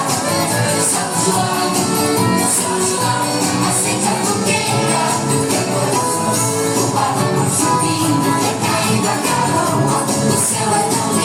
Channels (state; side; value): identical; both; correlation 1.00